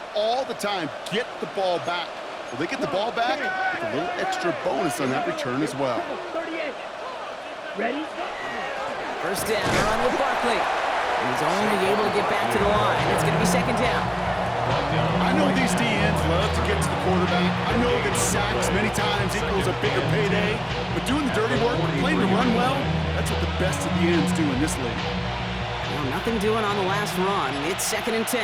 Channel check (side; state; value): both; identical; correlation 1.00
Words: all the time. Get the ball back. Well, they get the ball back with a little extra bonus on that return as well. 38. Ready? First down, run with Barkley. And he's only able to get back to the line. It's going to be 2nd down. I know these DNs love to get to the quarterback. I know that sacks many times equals a bigger payday. But doing the dirty work, playing to run well, that's what the best of the ends do in this league. Well, nothing doing on the last run. It's 2nd and 10.